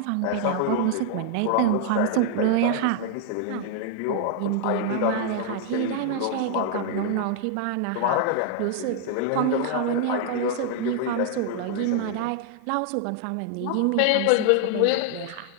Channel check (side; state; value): both; different; correlation 0.00